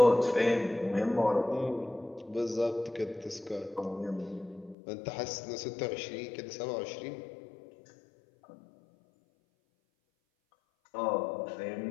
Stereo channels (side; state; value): right; drops out; at 4.8 s